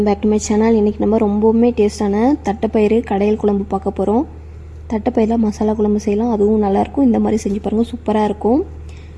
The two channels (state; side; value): identical; both; correlation 1.00